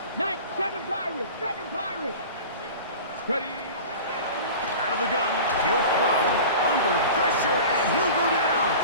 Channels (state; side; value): inverted; both; correlation -0.37